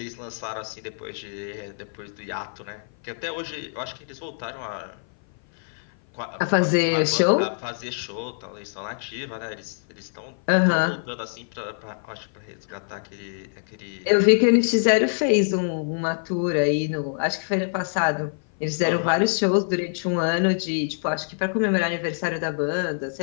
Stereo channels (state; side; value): silent; right; 56 dB below the other